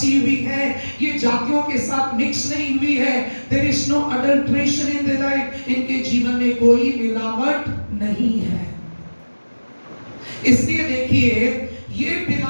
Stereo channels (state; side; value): inverted; both; correlation -1.00